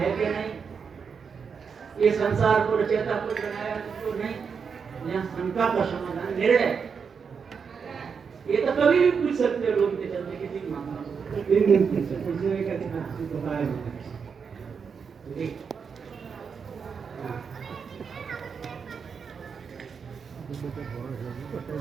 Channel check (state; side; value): quieter; left; 6.1 dB